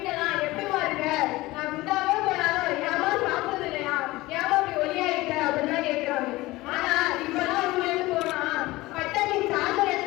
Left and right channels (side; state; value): right; quieter; 19.4 dB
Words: எப்படிமா இருக்க, நான் குண்டாவே போனாலும் ஏமா சாப்பிடுறது இல்லையா, ஏமா அப்படி ஒல்லியா இருக்க அப்படின்னு கேட்கிறாங்க. ஆனா இப்பெல்லாம் ஊர்ல இருந்து போனா பட்டணி சாதனை